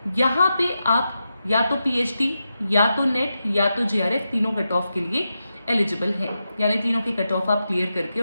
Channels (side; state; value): both; inverted; correlation -0.89